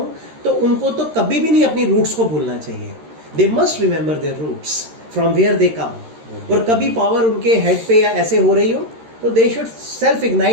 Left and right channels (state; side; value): late; left; 13 ms